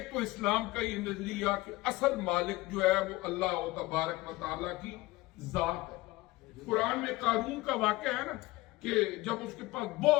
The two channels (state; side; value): quieter; right; 19.7 dB